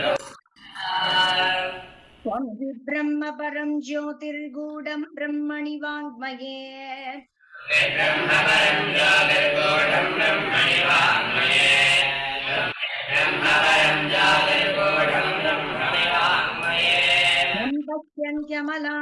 त्वं हि ब्रह्म परं ज्योतिर्गूढं ब्रह्मणि वाङ्मये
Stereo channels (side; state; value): both; identical; correlation 1.00